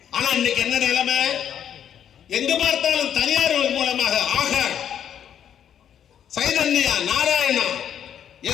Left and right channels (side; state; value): right; quieter; 9.3 dB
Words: ஆனா இன்னைக்கு என்ன நிலைமை? எங்க பார்த்தாலும் தனியார் மூலமாக ஆகார், சைதன்யா, நாராயணா,